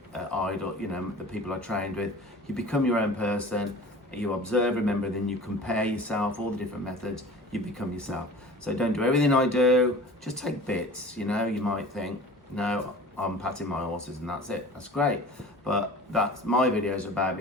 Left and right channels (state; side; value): normal; both; correlation 0.40